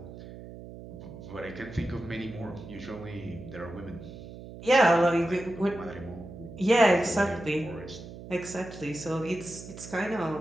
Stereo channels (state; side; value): noise; right; hum, 14 dB below the sound